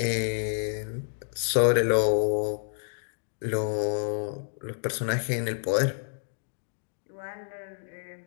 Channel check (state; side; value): silent; right; digital silence